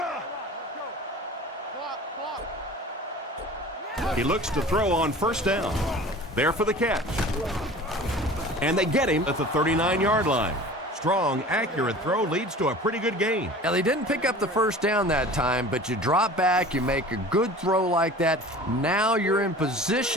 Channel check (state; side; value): normal; both; correlation 0.41